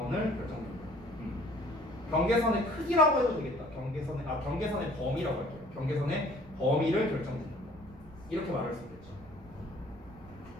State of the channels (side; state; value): right; noise; rumble, 20 dB below the sound